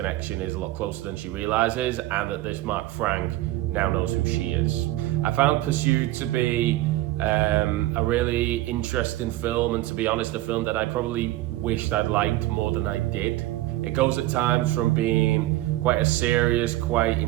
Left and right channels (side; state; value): left; quieter; 16.4 dB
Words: is a lot closer than she realizes, and that this Mark Frank now knows who she is. I found Pursued to be a really interesting film, and to be honest, a film that I probably wished I'd liked more than I did. It goes at times from being quite a serious, quite